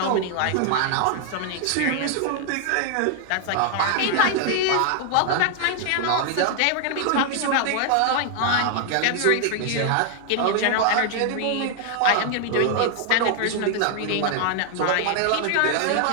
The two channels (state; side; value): different; both; correlation 0.00